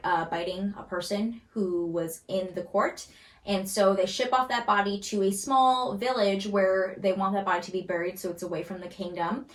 biting a person who was in the court. And so they ship off that body to a small village where they want that body to be buried so it's away from the kingdom.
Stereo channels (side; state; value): both; identical; correlation 1.00